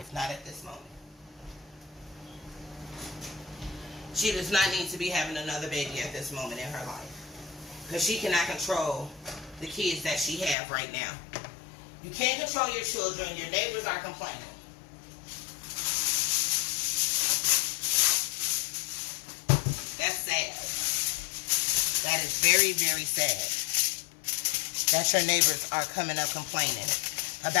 Not at this moment. She does not need to be having another baby at this moment in her life. Because she cannot control the kids that she have right now. You can't control your children. Your neighbors are complaining. That's sad. That is very, very sad. That your neighbors are coming up complaining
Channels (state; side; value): drops out; right; at 10.6 s